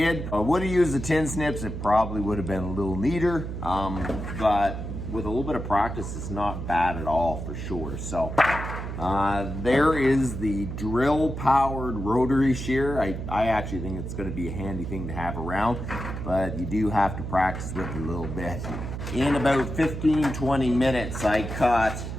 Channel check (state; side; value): noise; right; hum, 6 dB below the sound